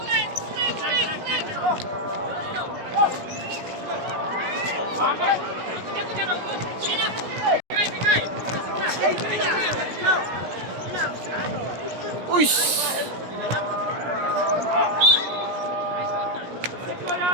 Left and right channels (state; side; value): late; left; 17 ms